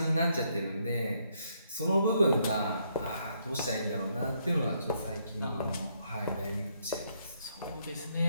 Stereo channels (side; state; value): both; inverted; correlation -0.74